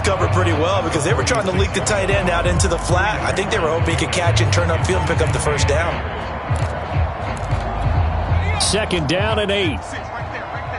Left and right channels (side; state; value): both; identical; correlation 1.00